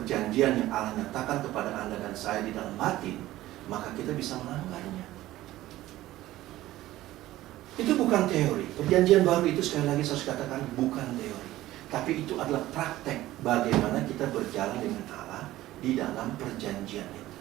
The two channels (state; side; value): quieter; left; 15.7 dB